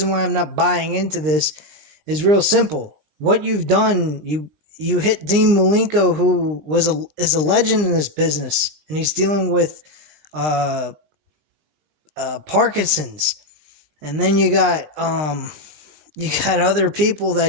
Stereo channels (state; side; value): late; left; 20 ms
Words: why I'm not buying into this is real simple. What you've done, you hit Dean Malenko, who is a legend in this business, and he's dealing with Parkinson's. And then you got other people that